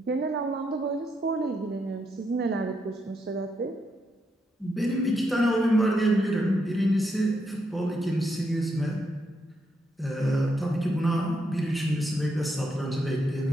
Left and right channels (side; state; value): both; normal; correlation 0.80